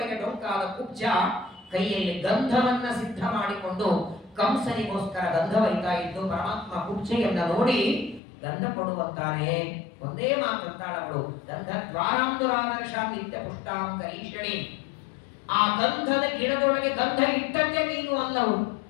ಡೊಂಕಾದ ಕುಬ್ಜ ಕೈಯಲ್ಲಿ ಗಂಧವನ್ನ ಸಿದ್ಧ ಮಾಡಿಕೊಂಡು ಕಂಸನಿಗೋಸ್ಕರ ಗಂಧ ಒಯ್ತಾ ಇದ್ದು, ಪರಮಾತ್ಮ ಕುಬ್ಜೆಯನ್ನ ನೋಡಿ ಗಂಧ ಕೊಡುವಂತಾನೆ. ಒಂದೇ ಮಾತಂತಾಳವಳು, ಗಂಧ ದ್ವಾರಾಂದುರಾದರ್ಶಾಂ ನಿತ್ಯ ಪುಷ್ಟಾಂ ಕರೀಷಣಿ. ಆ ಗಂಧದ ಗಿಡದೊಳಗೆ ಗಂಧ ಇಟ್ಟದ್ದೇ ನೀನು ಅಲ್ಲವು.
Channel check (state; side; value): drops out; right; at 8.2 s